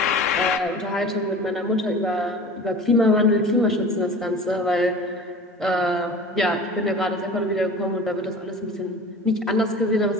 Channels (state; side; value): normal; both; correlation 0.39